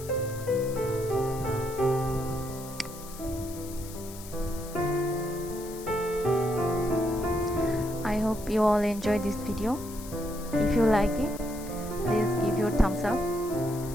I hope you all enjoyed this video. If you like it, please give your thumbs up.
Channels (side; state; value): left; noise; hiss, 15 dB below the sound